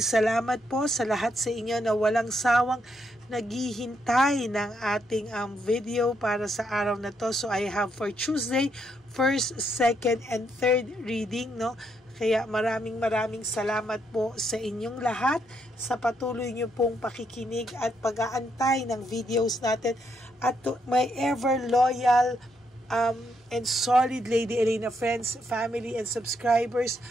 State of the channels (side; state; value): both; normal; correlation 0.77